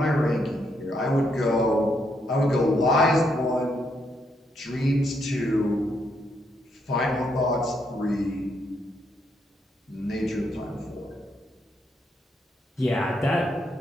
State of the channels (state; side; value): normal; both; correlation 0.76